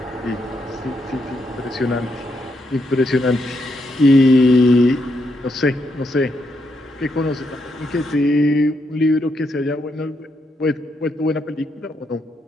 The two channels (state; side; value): normal; both; correlation 0.79